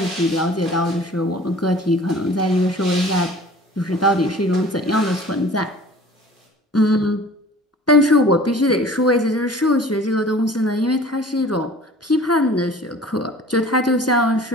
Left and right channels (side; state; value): both; normal; correlation 0.46